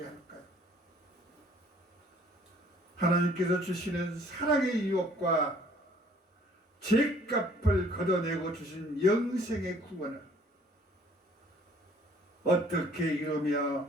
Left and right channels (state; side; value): normal; both; correlation 0.57